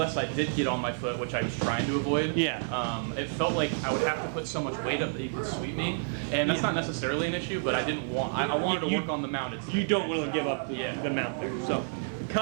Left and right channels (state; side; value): silent; left; 58 dB below the other